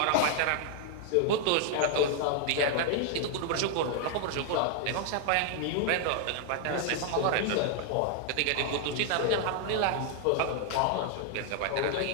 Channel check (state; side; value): different; both; correlation 0.00